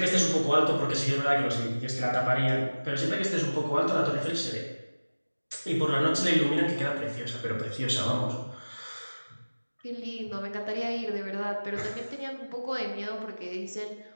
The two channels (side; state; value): both; inverted; correlation -1.00